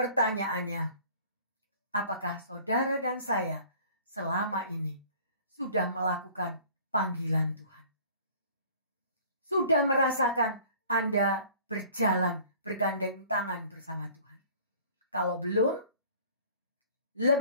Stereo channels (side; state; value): both; inverted; correlation -0.50